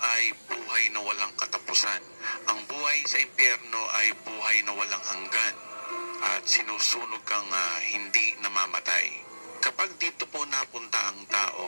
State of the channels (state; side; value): inverted; both; correlation -1.00